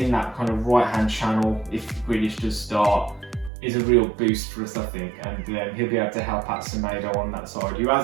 in that kind of right-hand channel, if Grealish does start, is a real boost for us, I think. And he'll be able to help out Semedo on that side, who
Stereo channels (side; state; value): left; drops out; at 3.5 s